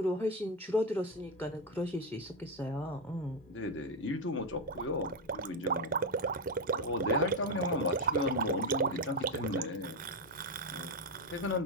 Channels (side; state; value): both; normal; correlation 0.08